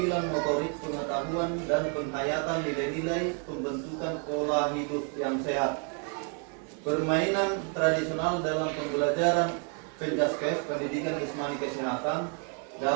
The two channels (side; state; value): left; quieter; 39.6 dB